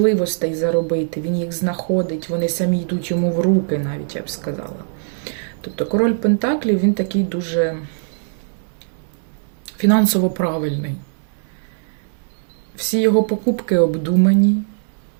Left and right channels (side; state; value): left; silent; digital silence